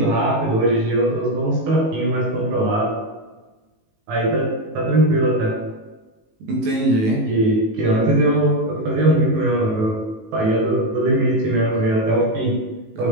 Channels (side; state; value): left; late; 19 ms